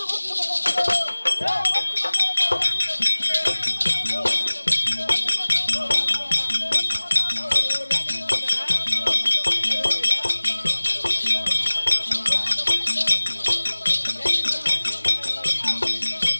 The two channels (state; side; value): inverted; both; correlation -1.00